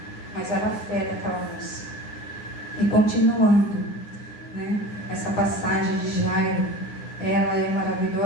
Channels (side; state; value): right; late; 9.8 ms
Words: mas era a fé daquela moça. E continuando, né, essa passagem de Jairo, ela é